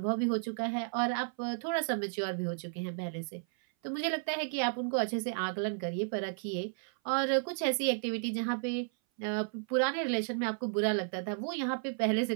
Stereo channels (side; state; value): left; silent; 56 dB below the other